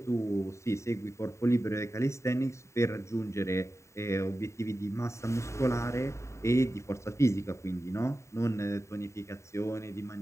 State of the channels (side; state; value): right; late; 0.14 ms